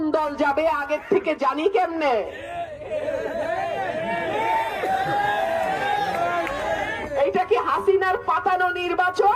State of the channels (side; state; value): both; identical; correlation 1.00